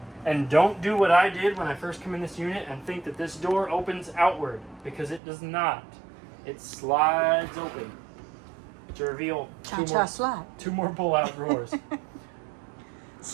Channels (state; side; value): drops out; left; at 5.2 s